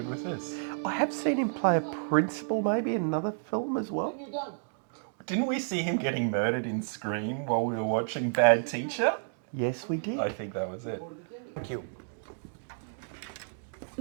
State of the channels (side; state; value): left; silent; digital silence